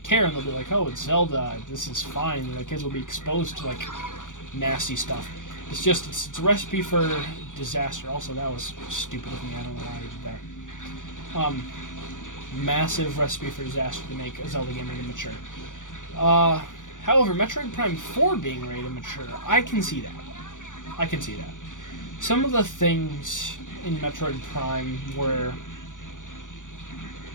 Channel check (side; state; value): right; late; 0.87 ms